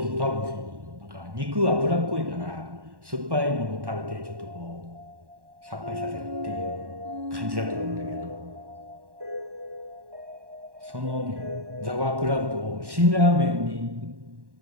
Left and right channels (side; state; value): left; late; 1.1 ms